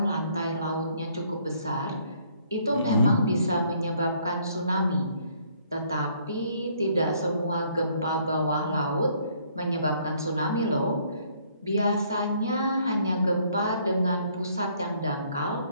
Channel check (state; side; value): inverted; both; correlation -0.64